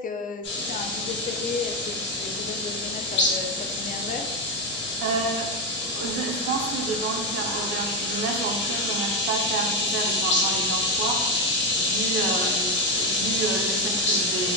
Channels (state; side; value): normal; both; correlation 0.09